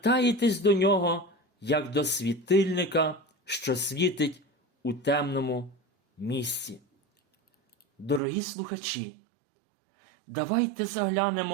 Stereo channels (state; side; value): drops out; left; at 8.2 s